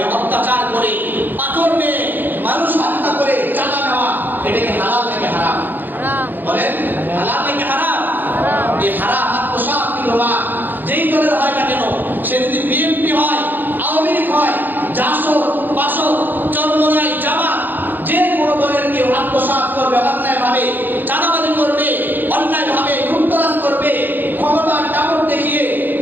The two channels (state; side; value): late; left; 0.090 ms